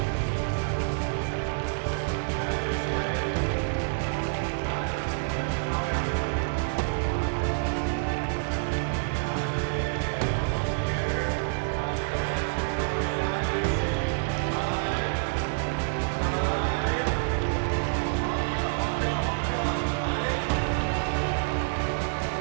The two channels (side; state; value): left; silent; digital silence